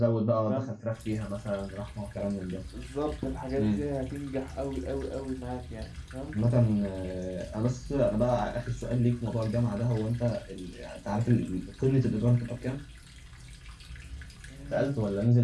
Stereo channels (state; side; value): identical; both; correlation 1.00